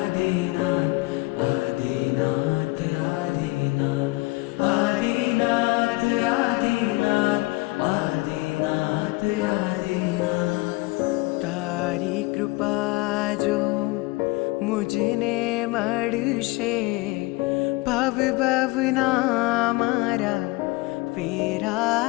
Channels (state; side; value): quieter; right; 23.2 dB